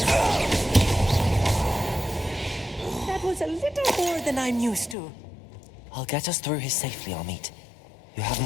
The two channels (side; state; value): right; drops out; at 5.0 s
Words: That was a little more than I'm used to. I'll get us through here safely, Amit. You have